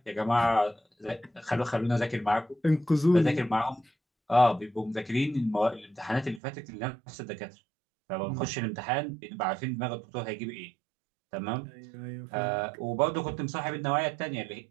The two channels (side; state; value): left; drops out; at 6.4 s